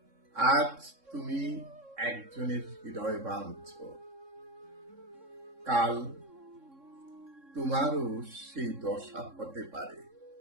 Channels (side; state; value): left; late; 3.6 ms